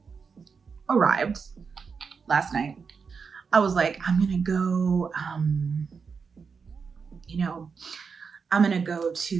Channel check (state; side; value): quieter; left; 5.6 dB